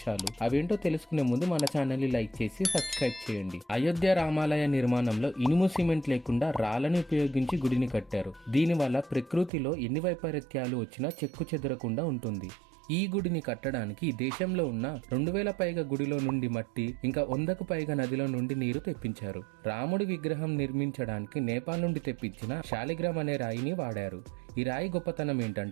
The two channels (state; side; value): drops out; left; at 9.5 s